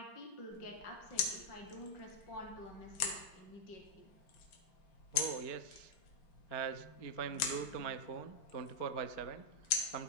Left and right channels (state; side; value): late; right; 5.6 ms